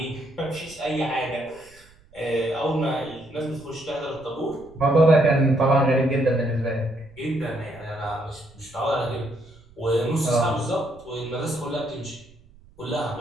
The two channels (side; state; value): right; noise; rumble, 27 dB below the sound